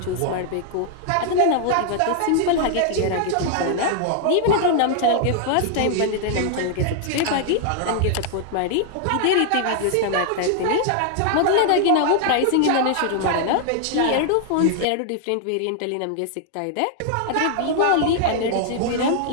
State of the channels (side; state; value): both; different; correlation 0.00